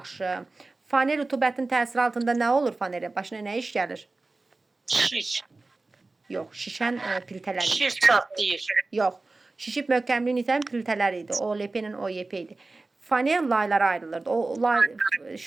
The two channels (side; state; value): left; quieter; 3.4 dB